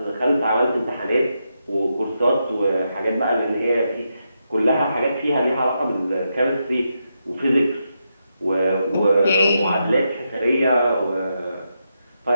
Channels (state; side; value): inverted; both; correlation -0.84